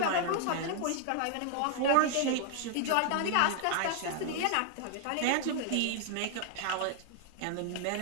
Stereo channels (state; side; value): different; both; correlation 0.00